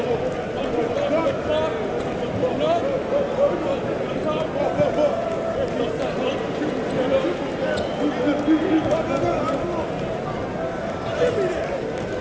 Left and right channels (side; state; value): both; identical; correlation 1.00